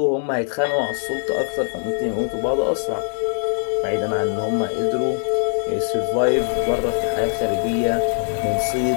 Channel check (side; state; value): right; silent; 64 dB below the other